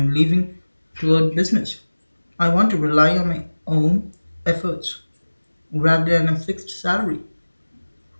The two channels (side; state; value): both; inverted; correlation -1.00